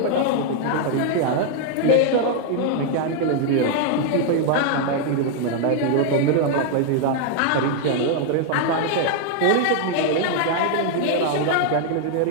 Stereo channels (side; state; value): both; different; correlation 0.00